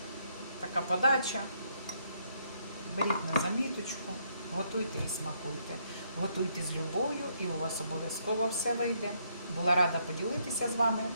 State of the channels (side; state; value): both; inverted; correlation -0.73